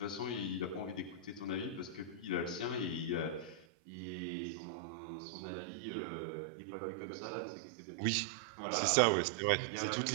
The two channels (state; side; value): drops out; left; at 3.7 s